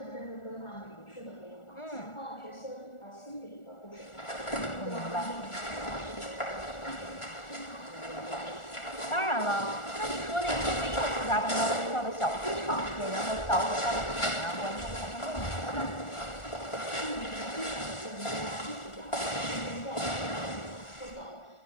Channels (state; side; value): late; right; 1.4 ms